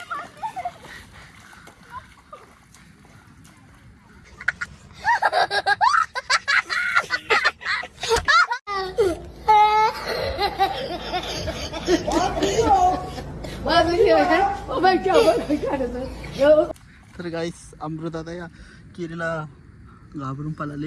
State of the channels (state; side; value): identical; both; correlation 1.00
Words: तर गाईस अमृत आता या किरीला घाबरून